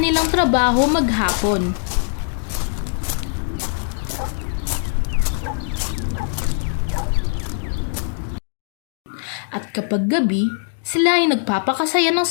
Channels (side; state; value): right; silent; digital silence